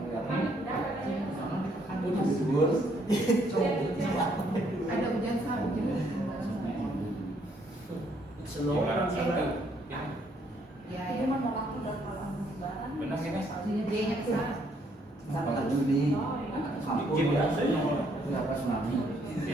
Ada hujan salju. Jualan satu. Ya, Itu menolak udah kalau lebaran. Benar ini. Dia ke sana. Sampai Juni. Bikin biasa ya. Enggak pas tsunami.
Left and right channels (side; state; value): both; normal; correlation 0.69